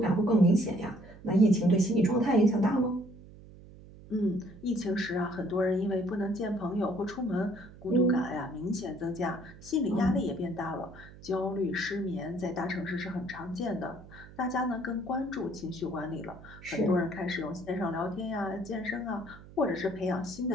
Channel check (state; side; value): noise; right; hum, 19 dB below the sound